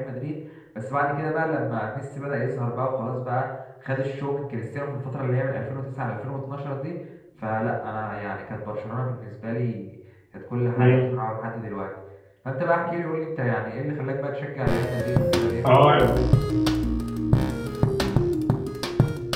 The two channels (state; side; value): identical; both; correlation 1.00